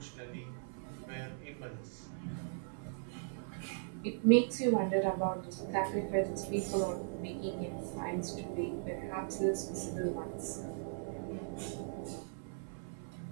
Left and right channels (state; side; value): silent; left; 52 dB below the other